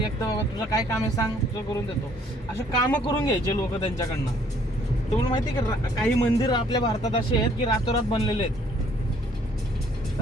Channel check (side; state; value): both; normal; correlation 0.62